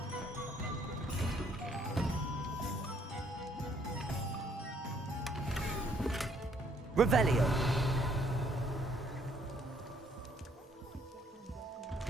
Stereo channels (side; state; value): both; normal; correlation 0.66